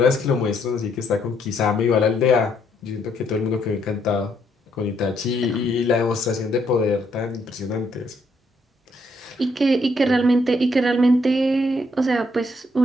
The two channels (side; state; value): both; normal; correlation 0.72